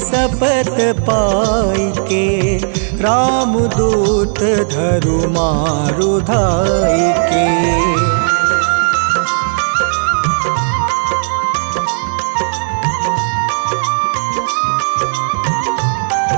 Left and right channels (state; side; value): silent; left; 70 dB below the other